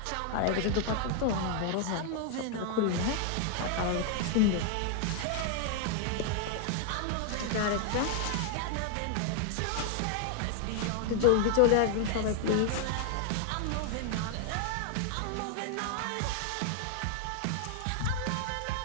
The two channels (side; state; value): both; different; correlation 0.00